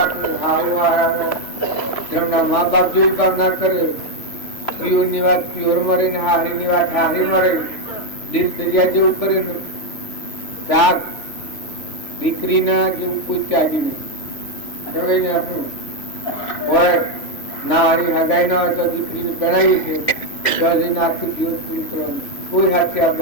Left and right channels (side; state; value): right; late; 3.0 ms